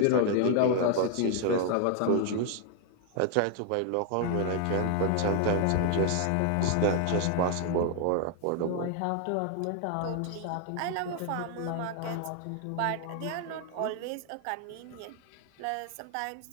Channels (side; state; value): both; different; correlation 0.00